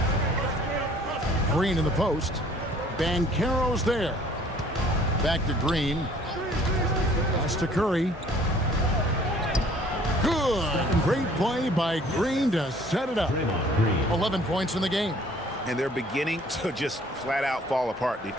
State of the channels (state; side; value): normal; both; correlation 0.56